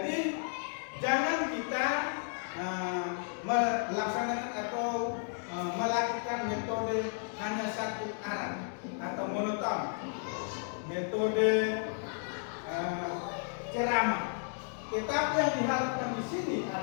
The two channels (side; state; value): right; silent; 56 dB below the other